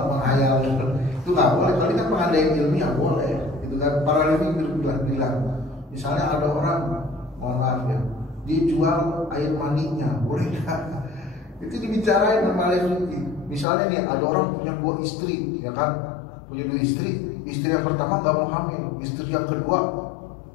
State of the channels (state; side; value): drops out; right; at 13.7 s